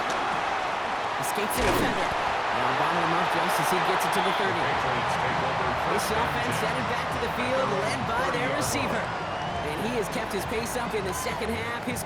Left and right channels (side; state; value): both; identical; correlation 1.00